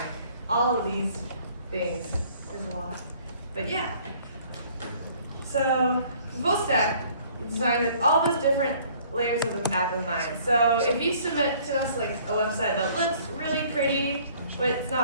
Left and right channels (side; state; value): both; inverted; correlation -0.57